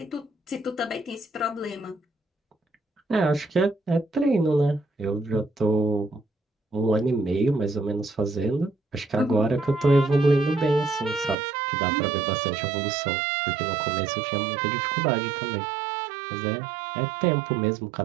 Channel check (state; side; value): drops out; left; at 11.4 s